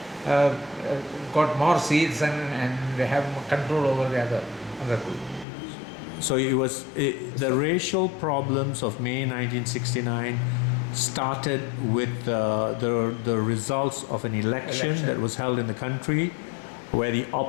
got more seats and have control over the other group. So it was the racial problems of May 1969 started with the results of an election that was held in the country, where the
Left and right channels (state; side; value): drops out; right; at 5.5 s